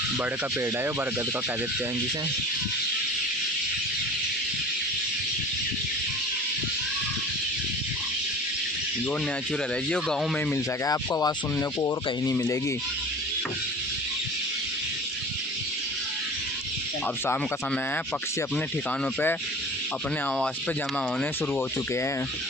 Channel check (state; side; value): normal; both; correlation 0.39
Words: बड़ का पेड़ है, बरगद का कह देते हैं जिसे। जो नेचुरल है, जो गांव में मिल सके आपको आवाज़ सुनने को, और कहीं नहीं मिलेगी। अब शाम का समय है, पक्षी अपने ठिकानों पे अपने आवास पे जमा होने शुरू हो चुके हैं।